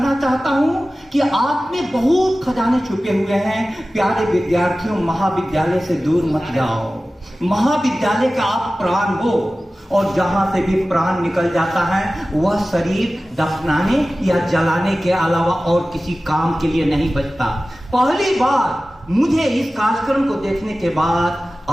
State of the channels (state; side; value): normal; both; correlation 0.96